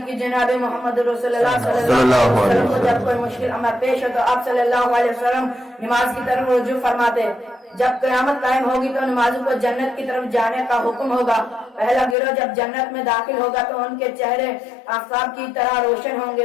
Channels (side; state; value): right; drops out; at 12.2 s